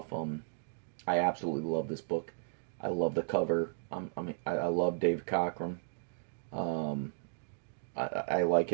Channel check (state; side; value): silent; left; digital silence